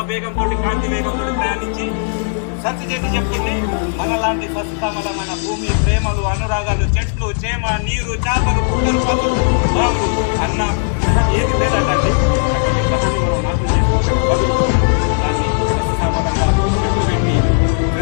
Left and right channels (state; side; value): silent; right; digital silence